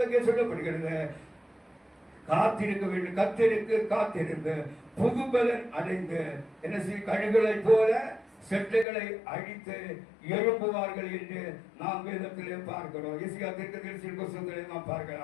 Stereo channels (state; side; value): drops out; right; at 8.8 s